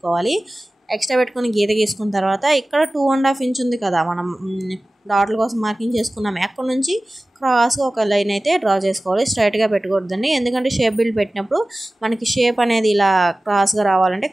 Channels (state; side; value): normal; both; correlation 0.96